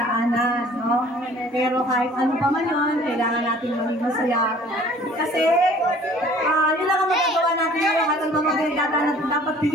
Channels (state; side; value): normal; both; correlation 0.52